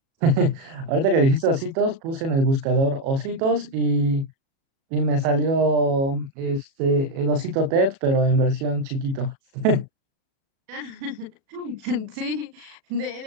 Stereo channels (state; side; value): late; left; 37 ms